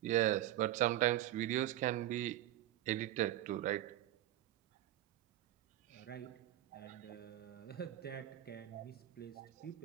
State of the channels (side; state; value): left; quieter; 13.8 dB